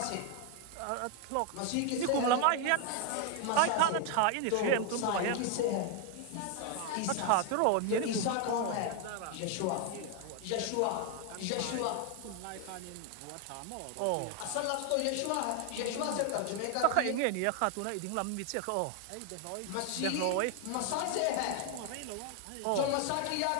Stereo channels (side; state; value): both; different; correlation 0.00